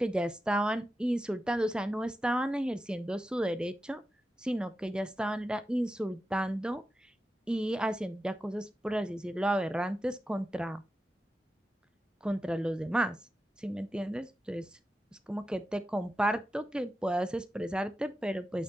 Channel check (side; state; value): both; normal; correlation 0.91